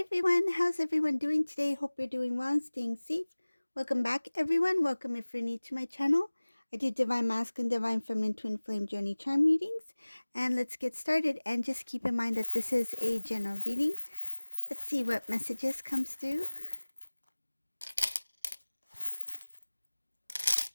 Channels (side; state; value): both; inverted; correlation -1.00